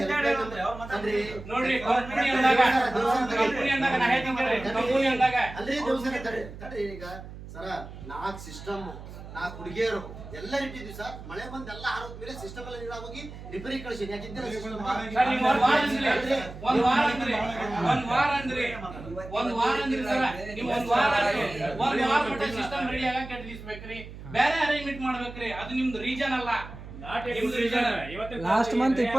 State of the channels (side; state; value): right; noise; hum, 13 dB below the sound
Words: ನೋಡ್ರಿ ಕಂಪನಿ ಅಂದಾಗ ನಾ ಹೇಳ್ತೀನಿ, ಕಂಪನಿ ಅಂದಾಗ ಈಗ ಸರ 4 ಸಿಸ್ಟಮ್ 4 ಹುಡುಗಿಯರು ಎಲ್ಲ ಇಟ್ಟಿದ್ವಿ ಸರ್. ಮಳೆ ಬಂದು ಎಲ್ಲ ಆರೋಗ್ಯ ಮೇಲೆ ಸಿಸ್ಟಮ್ ಎಲ್ಲ ನೀರು ಹೋಗಿ ರಿಪೇರಿ ಕಳಿಸಿ. ಯಾಕಿದ್ದಿಲ್ಲ ಸಿಸ್ಟಮ್ ಒಂದ್ ವಾರ ಅಂದ್ರಿ ಸರ್, ನೀವು ಒಂದ್ ವಾರ ಮಟ್ಟ ಸಿಸ್ಟಮ್ ರೆಡಿ ಆಗ ಕೆಟ್ಟಿಸ್ಬೇಕ್ರಿ, ಬೇರೆ ಅರೇಂಜ್ಮೆಂಟ್ ಮಾಡ್ಬೇಕ್ರಿ. ಅದು ನಿಮ್ದು ರೀಜನ್ ಅಲ್ಲ. ಲಾಸ್ಟ್ ಮಂತ್